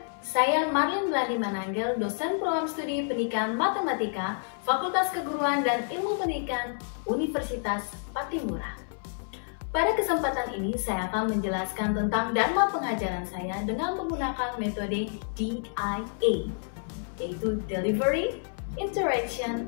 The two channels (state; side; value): silent; right; 59 dB below the other